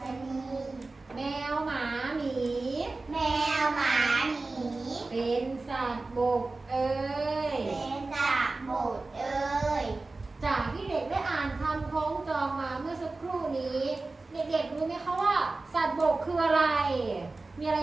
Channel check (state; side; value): quieter; left; 3.4 dB